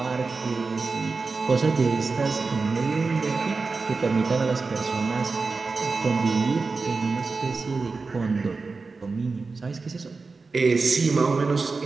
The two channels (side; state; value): left; quieter; 4.2 dB